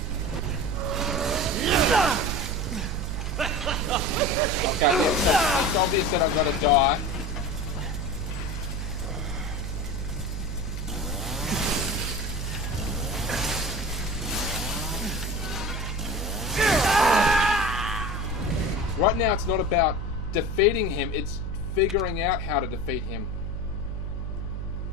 Okay, yeah, so it's obvious that I've got to die. Right now it's not about defeating him, it's figuring out how to defeat him.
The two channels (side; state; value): right; noise; hum, 4 dB below the sound